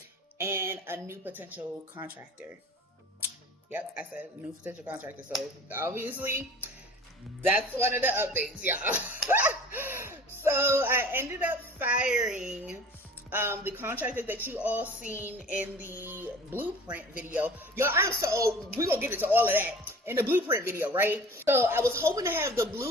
and a new potential contractor. Yep, I said new potential contractor. So obviously that's one of the updates, y'all. So I ended up firing the contractor that you all seen in the blueprint video. Y'all, we're gonna get into all of that in the blueprint video, right? So I was hoping to have the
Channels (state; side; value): normal; both; correlation 0.43